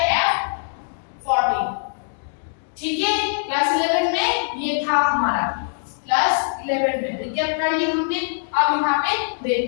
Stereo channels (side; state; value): right; silent; digital silence